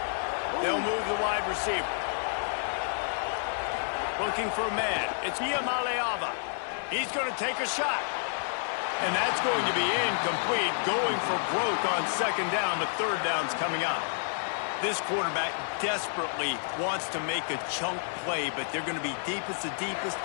They'll move the wide receiver. Looking for a man. It's Iamaleava. He's going to take a shot. And that's going to be incomplete, going for broke on second down, but third down's coming up. This quarterback desperately wants to make a chunk play, but they're going to be deepest to deepest,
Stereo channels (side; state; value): right; silent; digital silence